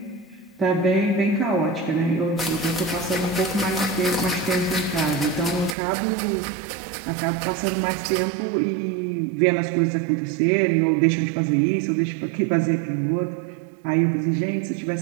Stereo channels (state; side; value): drops out; left; at 5.8 s